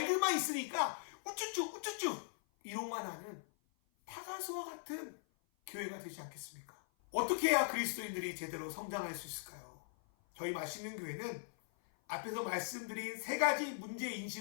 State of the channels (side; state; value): right; silent; 51 dB below the other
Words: 있으니까 우쭈쭈 우쭈쭈 이런만 하는 타가수와 같은 교회가 되지 않겠습니까? 어떻게 해야 그리스도인들이 제대로 성장할 수 있을까요? 저희 맛있는 교회는 앞에서 말씀드린 세 가지